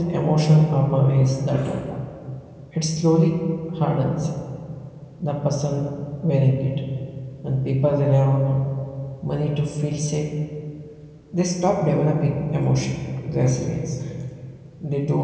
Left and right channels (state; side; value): identical; both; correlation 1.00